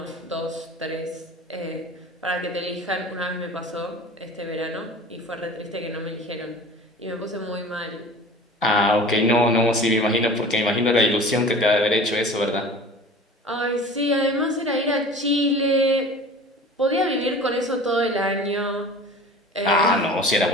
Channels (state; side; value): normal; both; correlation 0.40